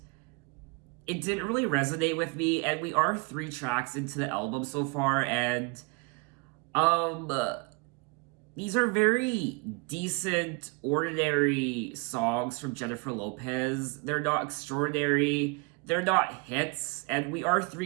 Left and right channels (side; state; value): left; quieter; 29.4 dB